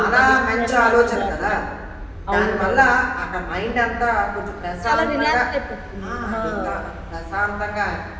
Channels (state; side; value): identical; both; correlation 1.00